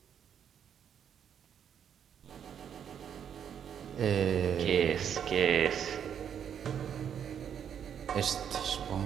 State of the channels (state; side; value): quieter; left; 8.5 dB